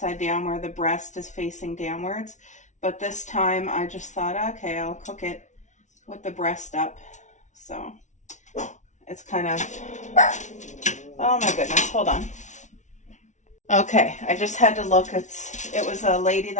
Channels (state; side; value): late; right; 0.35 ms